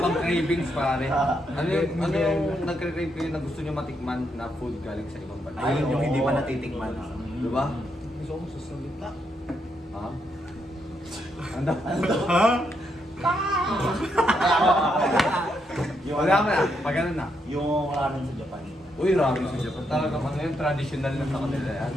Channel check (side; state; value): both; normal; correlation 0.79